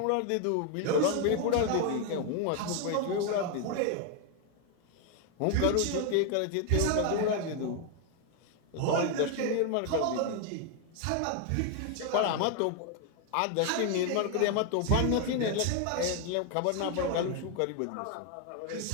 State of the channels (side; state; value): both; different; correlation 0.01